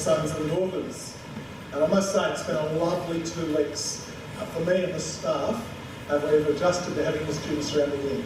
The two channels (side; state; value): both; identical; correlation 1.00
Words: and daughters. And I must say it's been a lovely 2 weeks for me and the staff. We've adjusted to having the students around the year.